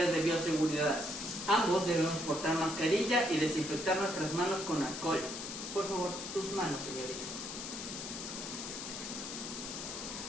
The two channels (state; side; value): noise; left; hiss, 7 dB below the sound